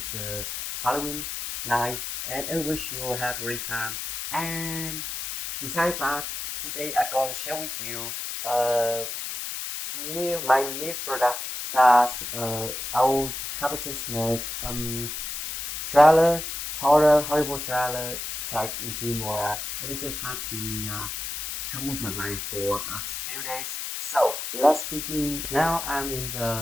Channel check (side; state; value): left; noise; hiss, 5 dB below the sound